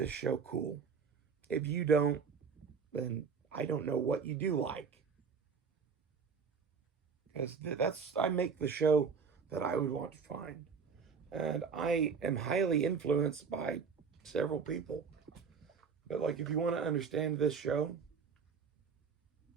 show cool. If you don't, then I don't know what you do like. Because I make the show that I would want to find. And I am highly influenced by several people. But like, if you want to understand this show,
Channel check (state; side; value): quieter; left; 5.8 dB